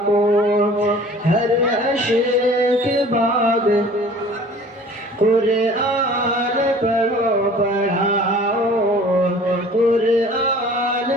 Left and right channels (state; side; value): normal; both; correlation 0.47